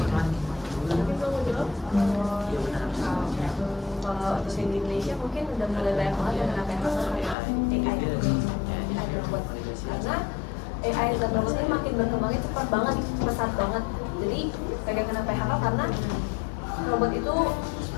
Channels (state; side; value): drops out; right; at 7.4 s